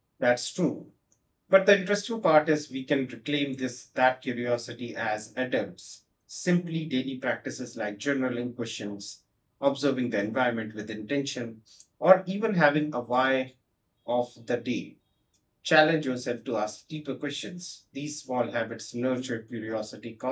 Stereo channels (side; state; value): both; identical; correlation 1.00